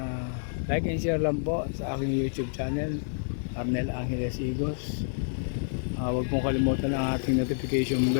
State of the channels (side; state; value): right; silent; 58 dB below the other